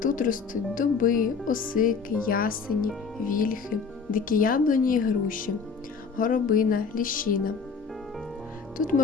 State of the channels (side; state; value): right; quieter; 5.4 dB